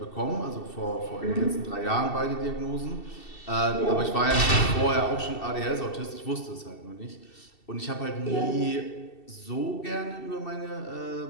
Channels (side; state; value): right; late; 2.7 ms